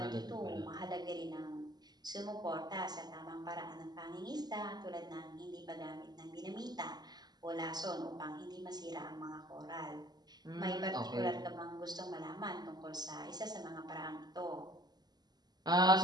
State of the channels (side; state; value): left; late; 0.20 ms